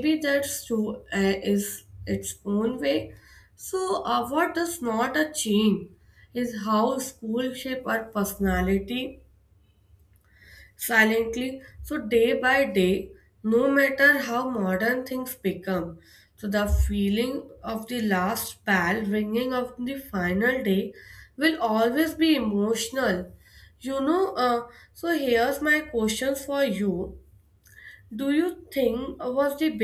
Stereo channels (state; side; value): identical; both; correlation 1.00